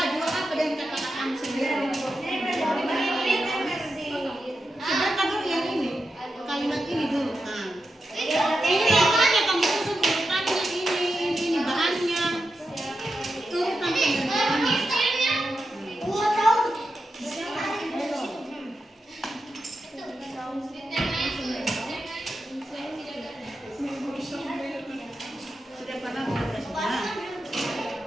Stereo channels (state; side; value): normal; both; correlation 0.89